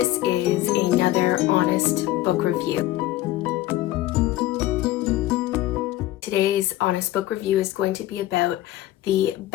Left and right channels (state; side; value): quieter; right; 15.4 dB